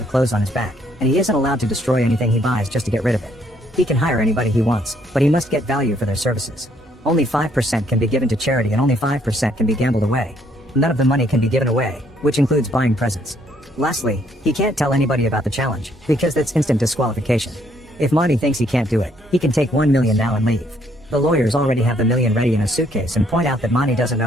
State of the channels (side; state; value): both; normal; correlation 0.68